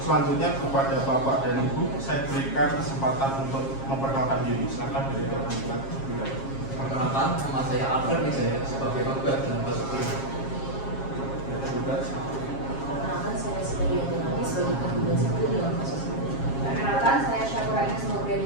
Selanjutnya kepada Bapak dan Ibu saya berikan kesempatan untuk memperkenalkan diri. Silakan dari tergugat. Perkenalkan, nama saya Alfred Wijaya sebagai penggugat dalam kasus ini. Perkenalkan, saya Siti Yanti sebagai tergugat satu dalam kasus ini. Perkenalkan, saya Syakura Ines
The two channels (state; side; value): late; right; 7.4 ms